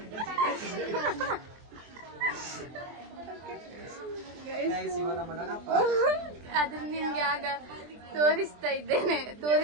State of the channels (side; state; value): left; late; 23 ms